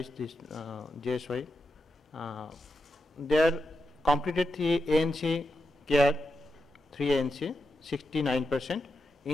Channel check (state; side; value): normal; both; correlation 0.87